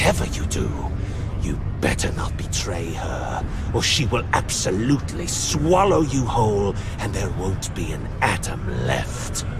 you do, you better not betray her, or she will absolutely swallow you whole, and there won't be an atom left.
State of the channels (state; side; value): identical; both; correlation 1.00